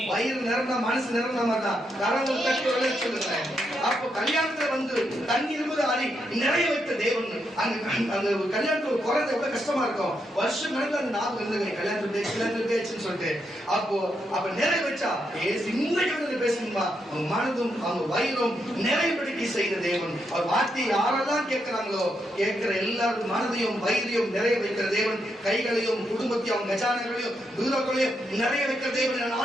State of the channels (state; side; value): normal; both; correlation 0.81